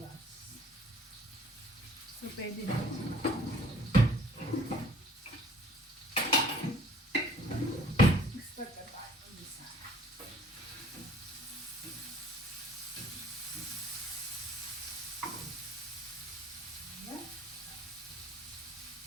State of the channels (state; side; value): normal; both; correlation 0.54